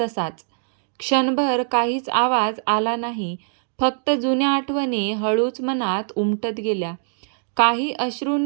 तसाच. क्षणभर काहीच आवाज आला नाही. फक्त जुन्या आठवणी हळूच मनात उमटत गेल्या. काही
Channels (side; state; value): left; silent; digital silence